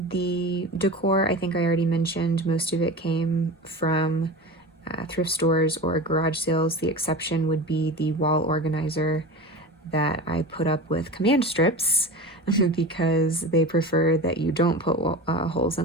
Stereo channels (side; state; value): both; normal; correlation 0.30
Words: decor, I think I already mentioned, most of it came from thrift stores or garage sales. The exception would be the wall organizer that I put up with command strips because they prefer that you don't put holes